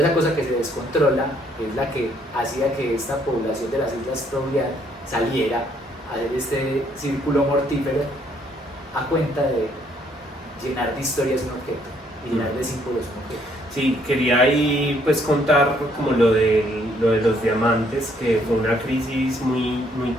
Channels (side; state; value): both; normal; correlation 0.67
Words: cosa que se descontrola es la que hacía que esta población de las Islas Trobriand saliera a hacer este círculo mortífero a cuenta de llenar de historias un objeto y llenar de símbolos un objeto. Sí, quería ahí pues contar como lo de los diamantes, que fue una crisis muy